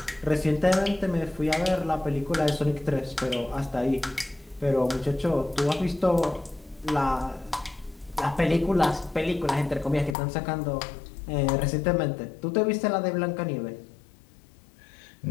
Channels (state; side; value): drops out; right; at 10.2 s